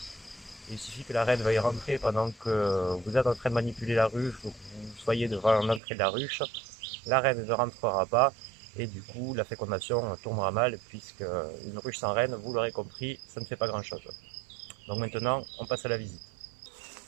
Il suffit que la reine veuille rentrer pendant que vous êtes en train de manipuler la ruche ou que vous soyez devant l'entrée de la ruche. La reine ne rentrera pas et du coup la fécondation tournera mal puisque une ruche sans reine, vous l'aurez compris, ça ne fait pas grand chose. Donc maintenant on passe à la visite.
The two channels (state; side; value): drops out; left; at 5.8 s